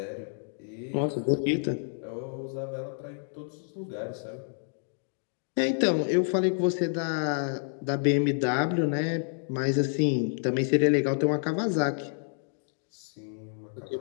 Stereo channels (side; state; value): right; silent; 59 dB below the other